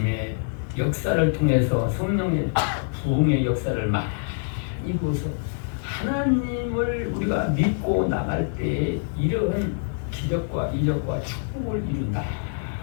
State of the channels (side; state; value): right; silent; 59 dB below the other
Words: 역사를 통해서 성령의 부흥의 역사를 많이 보서 하나님을 우리가 믿고 나갈 때 이런 기적과 이적과 축복을 이룬다